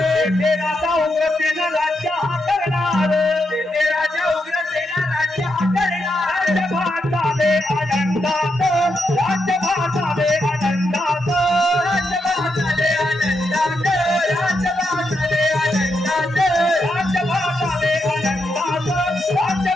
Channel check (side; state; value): both; normal; correlation 0.83